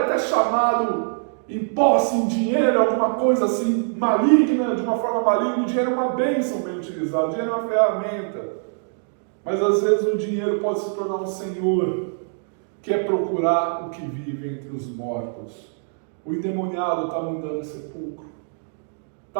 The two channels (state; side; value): silent; left; digital silence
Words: até chamado em posse, em dinheiro, alguma coisa assim maligna, de uma forma maligna. O dinheiro é uma bênção bem utilizado, o dinheiro é uma ferramenta. Mas às vezes o dinheiro pode se tornar um senhor, que é procurar o que vive entre os mortos. O endemoniado estava andando no sepulcro,